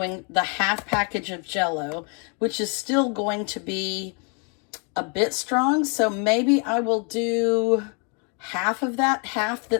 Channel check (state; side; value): quieter; right; 36.8 dB